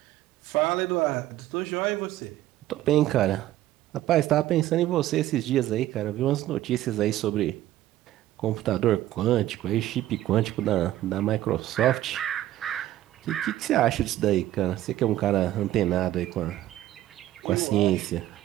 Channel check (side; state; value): left; quieter; 14.1 dB